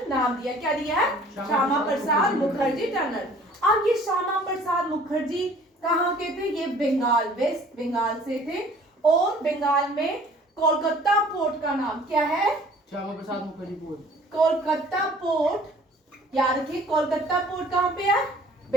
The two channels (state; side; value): normal; both; correlation 0.52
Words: नाम दिया। क्या दिया है? श्यामा प्रसाद मुखर्जी टनल। अब ये श्यामा प्रसाद मुखर्जी कहाँ के थे? ये बंगाल, वेस्ट बंगाल से थे। और बंगाल में कोलकाता पोर्ट का नाम क्या है? श्यामा प्रसाद मुखर्जी पोर्ट। कोलकाता पोर्ट याद रखिए। कोलकाता पोर्ट कहाँ पे है?